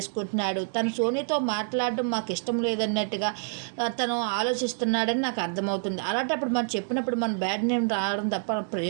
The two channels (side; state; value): left; silent; 60 dB below the other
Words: తను సోనీతో మాట్లాడడం మాకు ఇష్టం లేదన్నట్టుగా తను ఆలోచిస్తున్నాడని నాకు అర్థమవుతుంది. అలాంటప్పుడు మనం చెప్పినప్పుడు మన బ్యాడ్ నేమ్ రావడం తప్ప